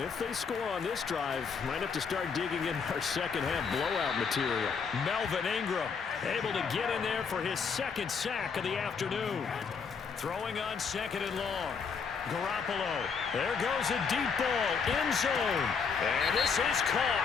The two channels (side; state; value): right; quieter; 5.8 dB